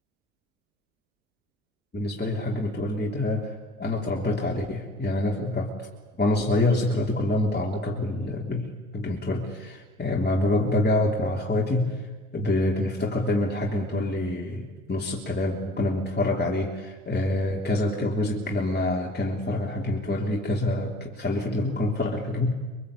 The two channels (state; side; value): normal; both; correlation 0.50